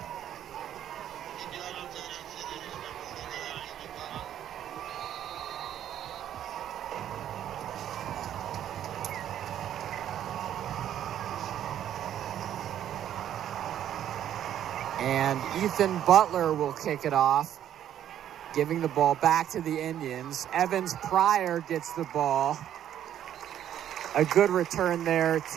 And Ethan Butler will kick it off, giving the ball back to the Indians. Evans Pryor gets the ball. A good return there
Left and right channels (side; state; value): left; quieter; 10.7 dB